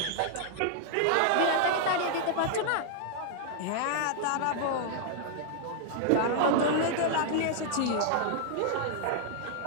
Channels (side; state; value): both; different; correlation 0.00